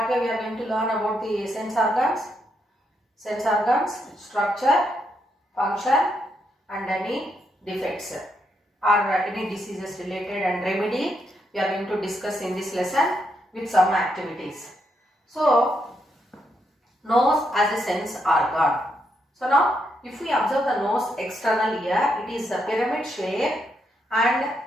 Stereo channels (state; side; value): normal; both; correlation 0.79